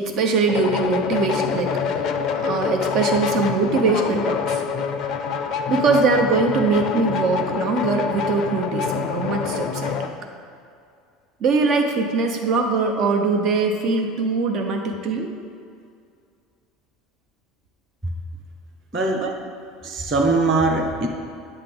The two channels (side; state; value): both; normal; correlation 0.36